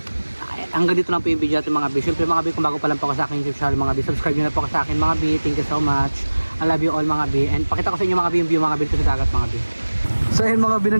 hanggang dito lang po yung video natin mga B. Siyempre mga B, kung bago pa lang po ako sa akin YouTube channel mga B, subscribe nyo na po ako sa akin mga B. Thank you so much. I love you all mga B. And pakita ko sa inyo mga B yung view mga B dito sa dagat mga B. So ayun mga B,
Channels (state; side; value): inverted; both; correlation -1.00